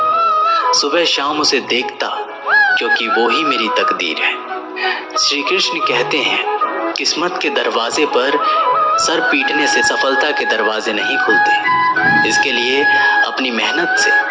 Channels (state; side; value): identical; both; correlation 1.00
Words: सुबह शाम उसे देखता क्योंकि वो ही मेरी तकदीर है। श्री कृष्ण कहते हैं, किस्मत के दरवाजे पर सर पीटने से सफलता के दरवाजे नहीं खुलते। इसके लिए अपनी मेहनत से